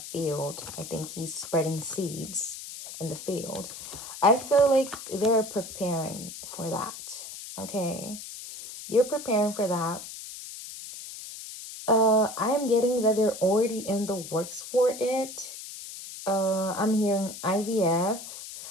field, I think he's spreading seeds in the field. I feel like they're preparing for that. Okay, you're preparing for that. I'm getting that they're already in the works for it. I'm hearing IVF.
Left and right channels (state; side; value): noise; left; hiss, 11 dB below the sound